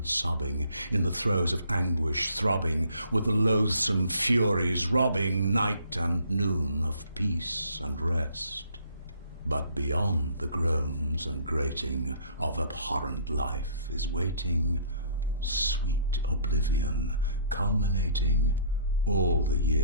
sobbing, in the throes of anguish throbbing, with the loathsome furies robbing night and noon of peace and rest. But beyond the groans and grating of abhorrent life is waiting sweet oblivion, culminating all the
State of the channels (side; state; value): both; inverted; correlation -0.58